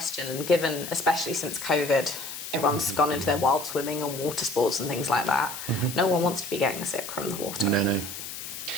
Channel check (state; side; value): noise; left; hiss, 9 dB below the sound